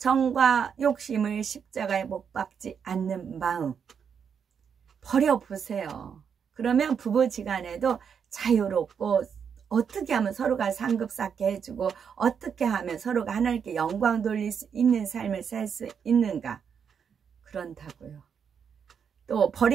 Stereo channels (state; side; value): quieter; left; 7.1 dB